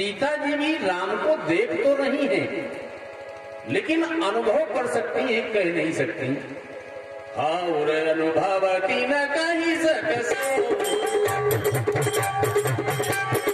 जी भी राम को देख तो रही हैं, लेकिन अनुभव कर सकती हैं, कह नहीं सकती। और अनुभव की न कही सक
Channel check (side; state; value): both; identical; correlation 1.00